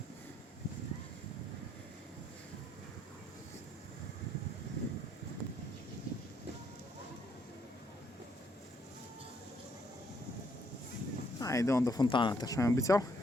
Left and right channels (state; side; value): normal; both; correlation 0.71